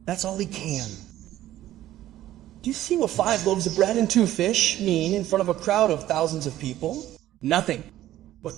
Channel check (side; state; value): left; quieter; 13.8 dB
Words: That's all he can. Do you see what 5 loaves of bread and 2 fish mean in front of a crowd of thousands of people? Nothing. But